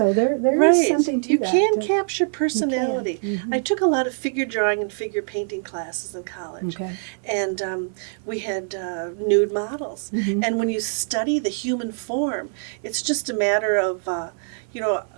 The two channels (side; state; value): left; silent; 61 dB below the other